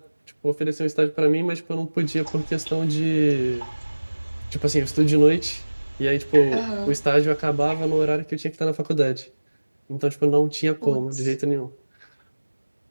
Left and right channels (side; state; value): both; inverted; correlation -1.00